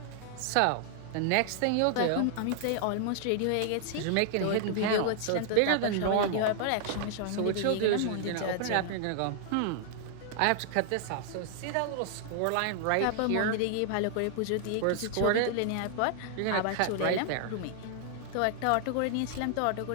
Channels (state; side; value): different; both; correlation 0.00